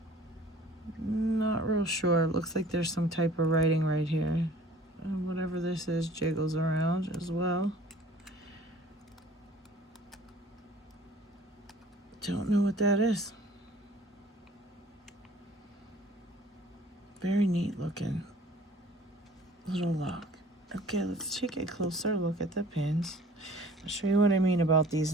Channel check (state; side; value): normal; both; correlation 0.50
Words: Not real sure. Looks like there's some type of writing right here. Whatever this is jiggles around as well. Don't know what that is. Very neat looking little lock. Okay, let's take a closer look at the pins. I'll show you what I mean about these